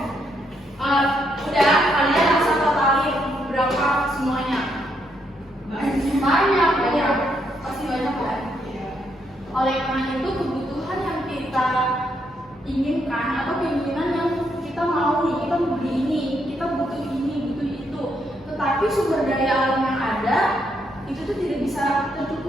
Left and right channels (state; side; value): normal; both; correlation 0.76